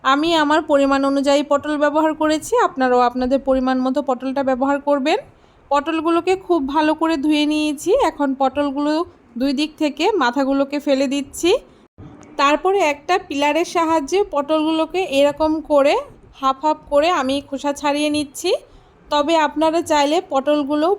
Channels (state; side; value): identical; both; correlation 1.00